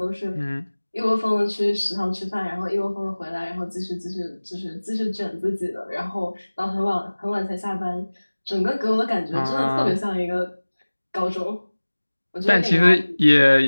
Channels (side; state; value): both; inverted; correlation -1.00